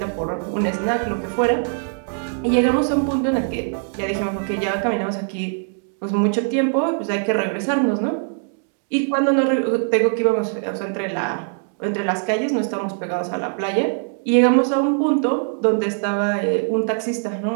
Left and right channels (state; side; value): silent; left; 64 dB below the other